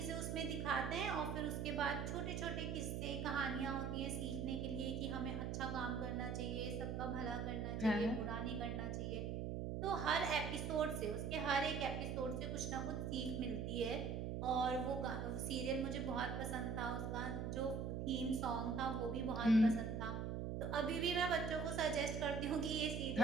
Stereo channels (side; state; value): right; noise; hum, 2 dB below the sound